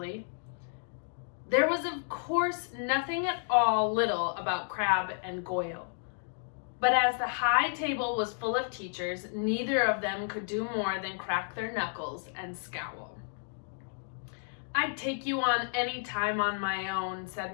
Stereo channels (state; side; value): silent; right; digital silence